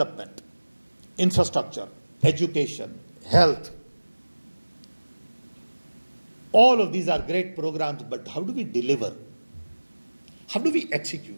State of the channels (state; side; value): inverted; both; correlation -1.00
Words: infrastructure, education, health. All of these are great programs, but how do we deliver? How do we